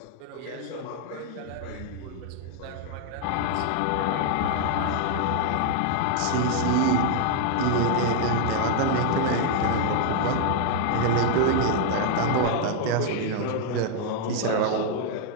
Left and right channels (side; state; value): both; different; correlation 0.00